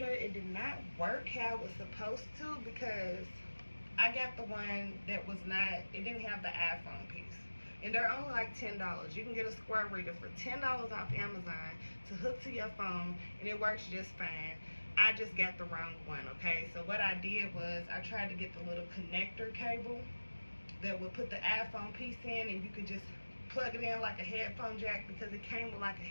It did not work how it was supposed to because I got the one that was not, it didn't have the iPhone piece. And they're only like $10. You can get a Square Reader for $10 off Amazon to hook to your phone, and it works just fine. I just got the wrong one, okay? So what I did was I tried to get the little connector cable that would put the iPhone piece in, and you could just plug it in like a headphone jack, because it came with like a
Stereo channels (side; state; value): both; inverted; correlation -1.00